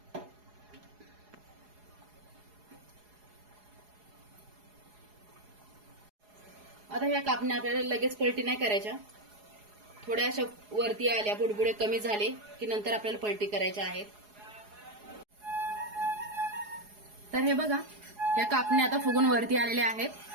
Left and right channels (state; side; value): late; left; 4.8 ms